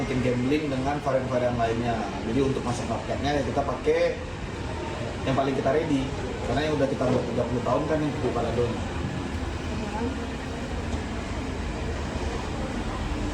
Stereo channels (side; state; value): both; identical; correlation 1.00